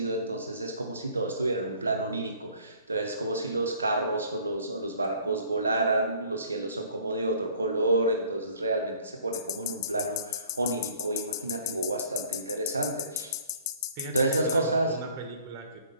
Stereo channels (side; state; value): both; inverted; correlation -0.53